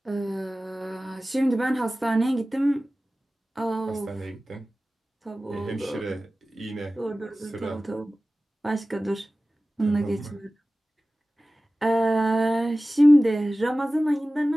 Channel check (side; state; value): both; normal; correlation 0.96